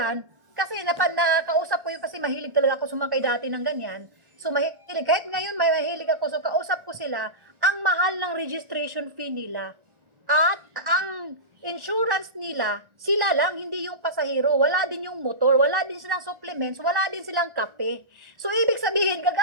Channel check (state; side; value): late; left; 1.4 ms